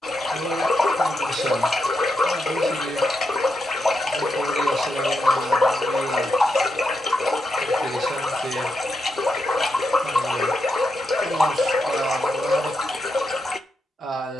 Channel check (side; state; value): both; normal; correlation 0.84